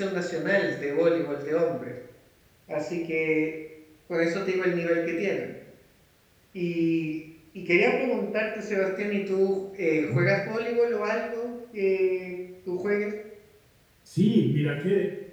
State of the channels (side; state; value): both; identical; correlation 1.00